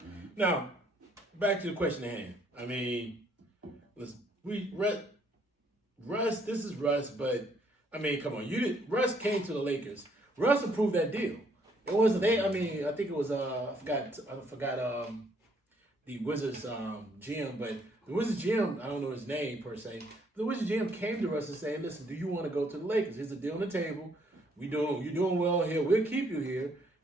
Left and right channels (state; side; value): normal; both; correlation 0.67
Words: Now, back to the question at hand. I mean, Russ, this is Russ, but I mean, come on, Russ came to the Lakers. Russ approved that deal. It wasn't I think it was I forgot the Wizards GM, but the Wizards GM, I don't know his name per se. The Wizards GM came to us and said, "Listen, do you want to go to the Lakers? Here's a deal on the table. You're doing well here. We'll keep you here.